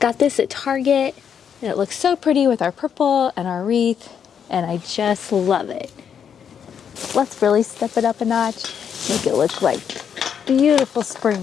this at Target, and it looks so pretty with our purple and our wreath, and I just love it. Let's really step it up a notch, make it look like beautiful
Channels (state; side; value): quieter; right; 7.8 dB